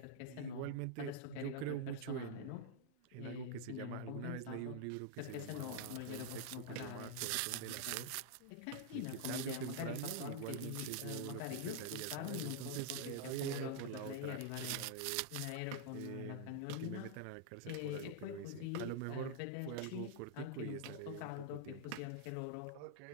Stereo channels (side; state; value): both; different; correlation -0.01